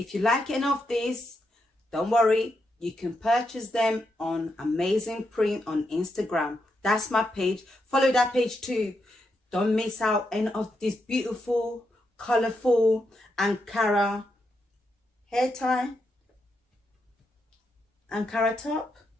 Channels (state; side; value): normal; both; correlation 0.83